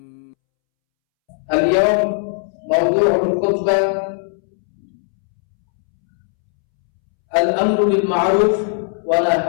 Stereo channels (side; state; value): right; silent; 67 dB below the other